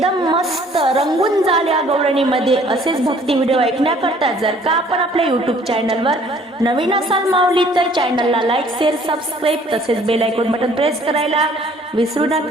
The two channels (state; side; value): normal; both; correlation 0.57